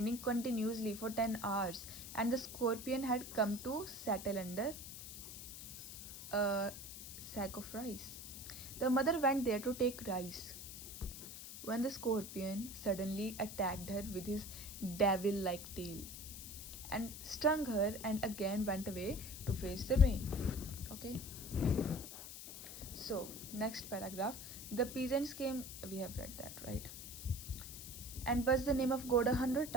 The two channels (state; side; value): noise; left; hiss, 10 dB below the sound